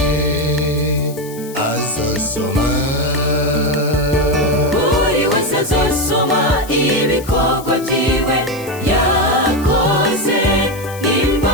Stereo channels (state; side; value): noise; left; hiss, 17 dB below the sound